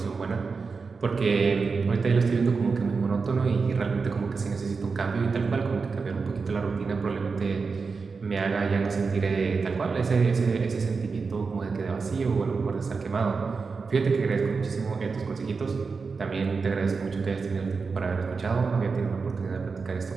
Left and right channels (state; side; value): quieter; left; 4.8 dB